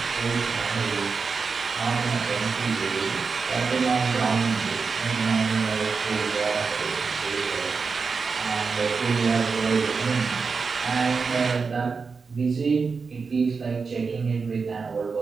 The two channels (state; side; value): quieter; left; 5.0 dB